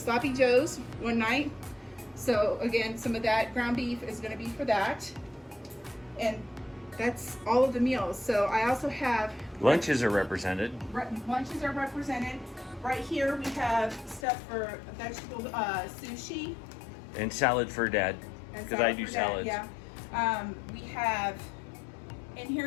Joe's one night. So again, some of that ground beef is gonna be for that. And that's all of the meals. So I also have... Lunches are represented. Lunches are represented. Right here we have stuff for vegetable sushi. And salad for Dad. Because I do salads. Yeah. We have, in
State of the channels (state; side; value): drops out; right; at 14.2 s